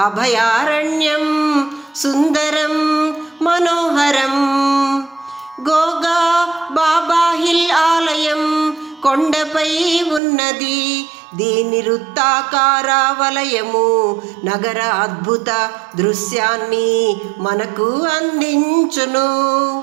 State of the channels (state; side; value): drops out; left; at 10.2 s